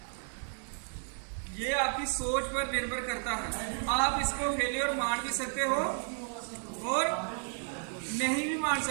ये आपकी सोच पर निर्भर करता है। आप इसको फेलियर मान भी सकते हो और नहीं भी मान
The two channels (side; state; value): left; silent; 56 dB below the other